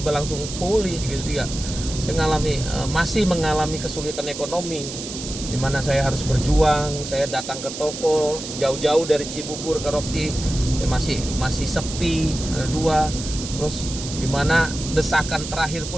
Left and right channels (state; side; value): noise; right; hiss, 9 dB below the sound